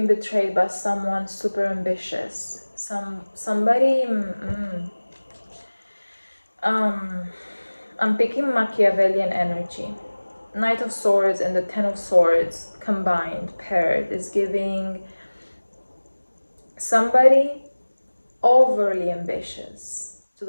betrayed by someone super ambitious. Somebody. I'm picking Machiavellian energy. Knight of Swords and the Ten of Swords combined, paired, is giving somebody overly ambitious to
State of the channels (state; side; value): inverted; both; correlation -1.00